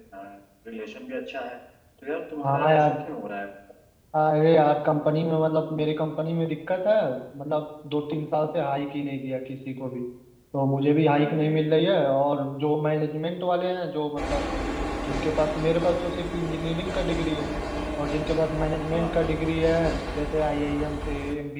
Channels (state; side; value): identical; both; correlation 1.00